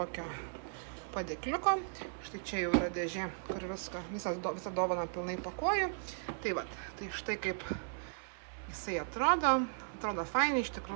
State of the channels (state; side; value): silent; left; 53 dB below the other